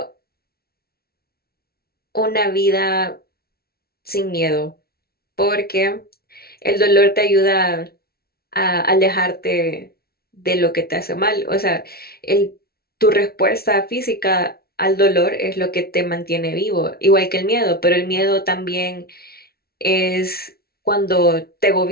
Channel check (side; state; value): right; late; 0.45 ms